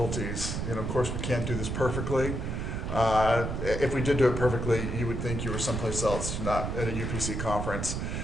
You know, of course we can't do this perfectly. If we did do it perfectly, you would think you were someplace else, not at a UPC conference.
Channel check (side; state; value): right; noise; rumble, 3 dB below the sound